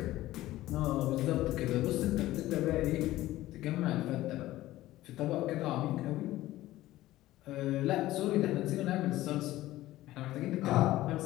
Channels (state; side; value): quieter; right; 16.0 dB